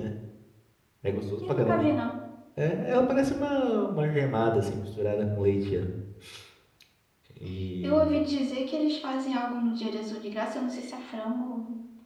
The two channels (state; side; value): identical; both; correlation 1.00